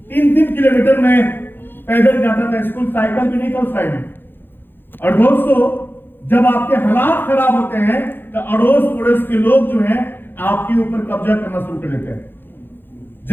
3-3 किलोमीटर में पैदल जाता था स्कूल, साइकिल भी नहीं था उस टाइम में। और दोस्तों, जब आपके हालात खराब होते हैं तो अड़ोस पड़ोस के लोग जो हैं आपके ऊपर कब्जा करना शुरू कर देते हैं।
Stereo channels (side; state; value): right; late; 0.099 ms